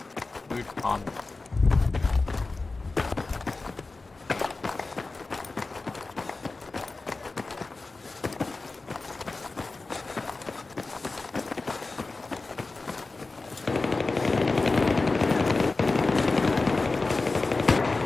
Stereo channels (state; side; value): quieter; right; 3.6 dB